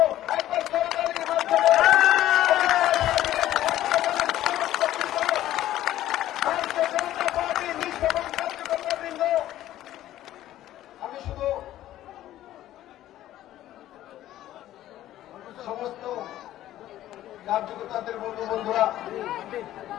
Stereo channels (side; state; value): right; quieter; 13.5 dB